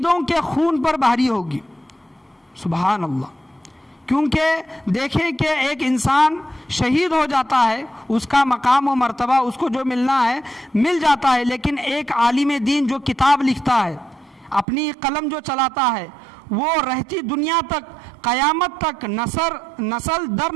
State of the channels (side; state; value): left; drops out; at 14.7 s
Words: کے خون پر بھاری ہوگی۔ سبحان اللہ۔ کیونکہ دیکھیں کہ ایک انسان شہید ہو جاتا ہے، اس کا مقام و مرتبہ اس کو جو ملنا ہے مل جاتا ہے، لیکن ایک عالم دین جو کتاب لکھتا ہے، اپنی قلم جو چلاتا ہے، وہ رہتی دنیا تک، قیامت تک، نسل در